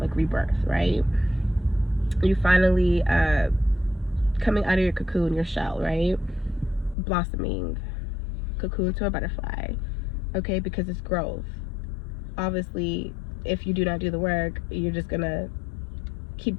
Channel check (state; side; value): drops out; right; at 7.0 s